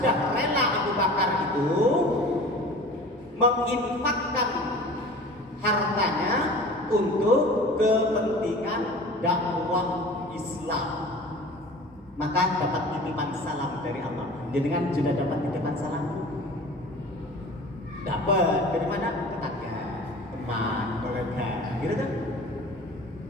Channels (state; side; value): normal; both; correlation 0.41